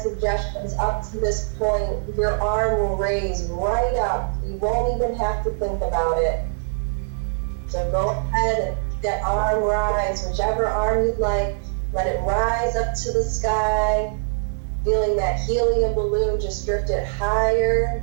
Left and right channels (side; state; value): left; silent; 64 dB below the other